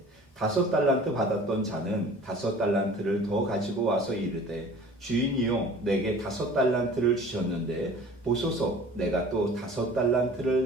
5달란트 받았던 자는 5달란트를 더 가지고 와서 이르되 주인이요 내게 5달란트를 주셨는데 보소서 내가 또 5달란트를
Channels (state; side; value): normal; both; correlation 0.45